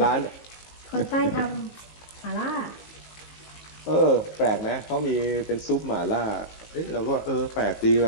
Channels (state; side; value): late; right; 19 ms